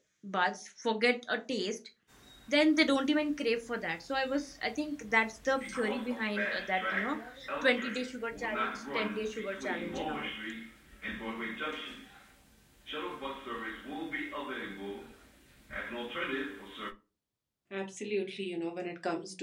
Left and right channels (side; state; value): both; identical; correlation 1.00